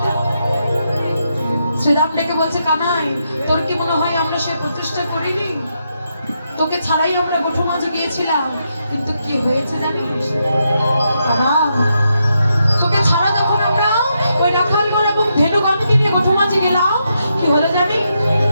শ্রীরাম ডেকে বলছে কানাই, তোর কি মনে হয় আমরা সে প্রচেষ্টা করিনি? তোকে ছাড়াই আমরা গোঠো মাঝে গিয়েছিলাম, কিন্তু কি হয়েছে জানিস? বাবা, তোকে ছাড়া যখন আমরা ওই রাখালগণ এবং ধেনুগণকে নিয়ে গোঠো মাঝে গেলাম, কি হলো জানি?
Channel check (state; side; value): inverted; both; correlation -0.82